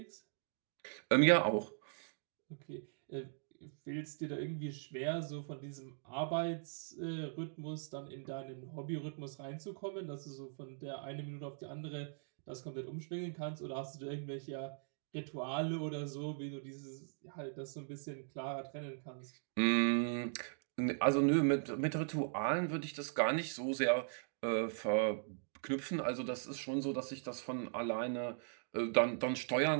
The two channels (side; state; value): left; silent; digital silence